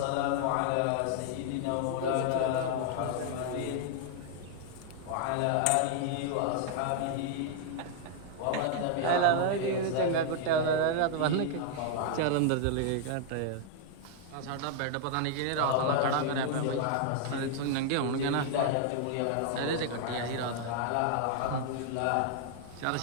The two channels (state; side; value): different; both; correlation 0.00